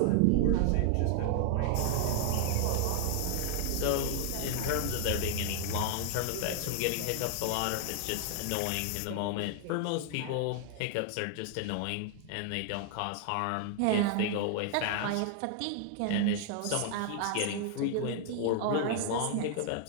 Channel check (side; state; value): both; different; correlation 0.00